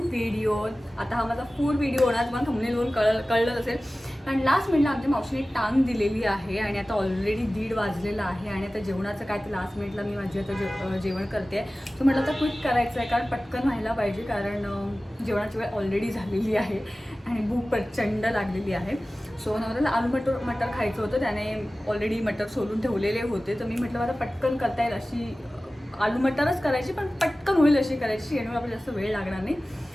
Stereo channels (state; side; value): normal; both; correlation 0.97